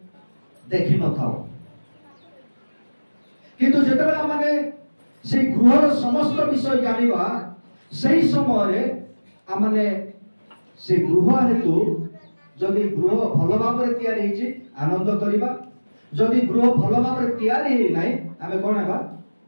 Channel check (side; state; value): both; inverted; correlation -1.00